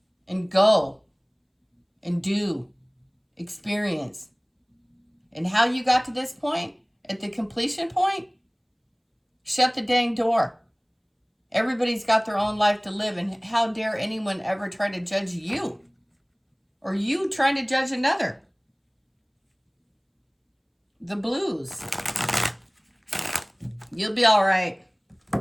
and go and do, experience. And how you got to this point, at the completion point, shut the dang door. Everybody's got their own life to live, and how dare anyone ever try to judge you? Or you trying to judge another? The blues. You'll be all right.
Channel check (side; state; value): both; identical; correlation 1.00